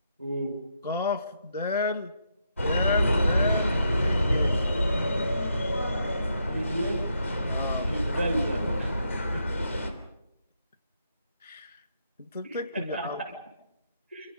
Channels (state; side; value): inverted; both; correlation -0.79